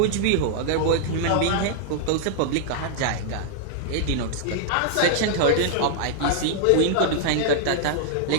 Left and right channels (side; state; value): both; different; correlation -0.01